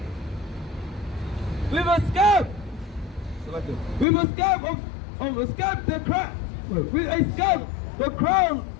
with a scab. With a scab of a scab the crown. With a scab the crown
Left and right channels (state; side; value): drops out; right; at 4.0 s